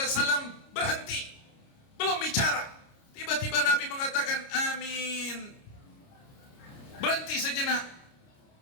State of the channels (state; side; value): late; right; 29 ms